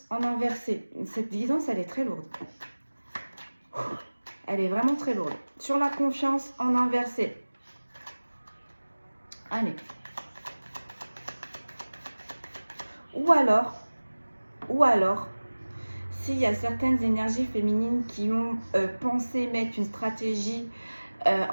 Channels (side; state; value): both; inverted; correlation -1.00